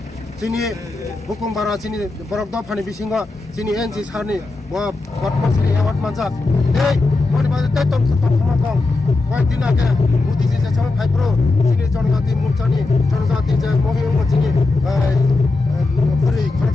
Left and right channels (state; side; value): quieter; right; 3.4 dB